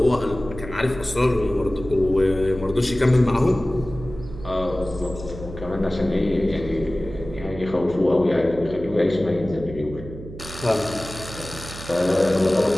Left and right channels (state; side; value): noise; right; hum, 13 dB below the sound